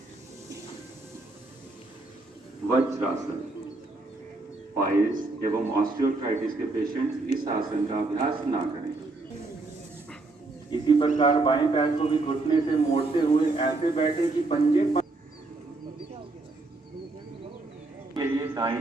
वज्रासन। पाइल्स एवं ऑस्टियोआर्थराइटिस के पेशेंट इस आसन का अभ्यास ना करें। इसी प्रकार बाएं पैर को भी घुटने से मोड़ते हुए ऐसे बैठे कि पंजे के लिए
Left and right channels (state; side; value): quieter; left; 3.3 dB